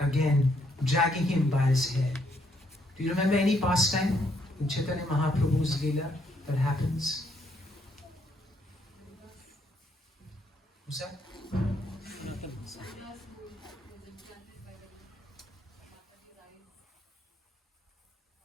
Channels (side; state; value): both; normal; correlation 0.72